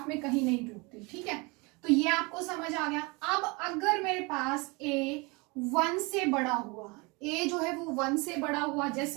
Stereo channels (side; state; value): left; quieter; 27.5 dB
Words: में कहीं नहीं टूटती, ठीक है। तो ये आपको समझ आ गया। अब अगर मेरे पास a 1 से बड़ा हुआ, a जो है वो 1 से बड़ा हुआ,